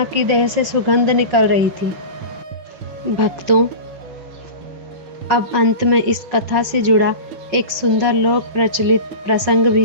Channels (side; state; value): left; late; 5.4 ms